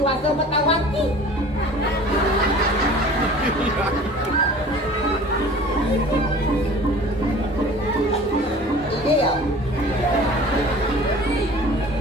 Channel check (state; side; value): normal; both; correlation 0.44